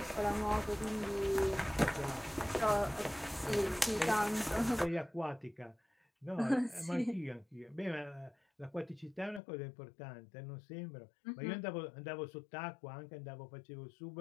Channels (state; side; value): drops out; right; at 9.4 s